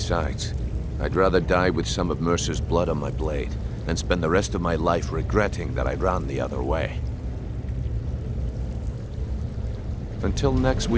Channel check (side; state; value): both; identical; correlation 1.00